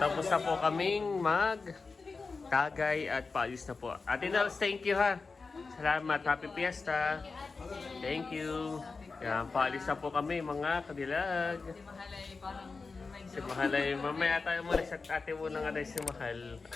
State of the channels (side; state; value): right; quieter; 4.3 dB